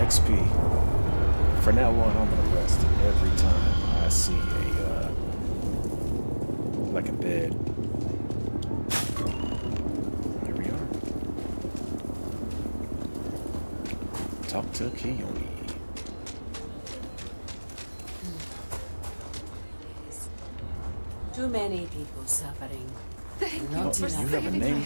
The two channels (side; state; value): both; inverted; correlation -1.00